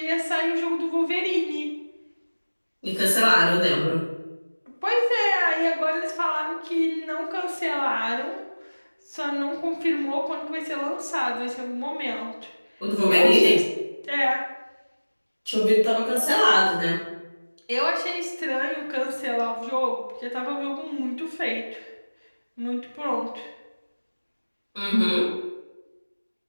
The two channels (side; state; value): both; inverted; correlation -1.00